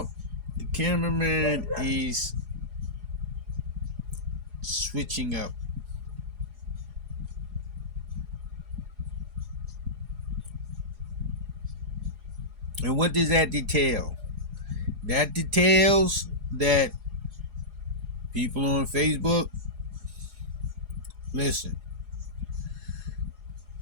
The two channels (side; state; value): left; late; 4.8 ms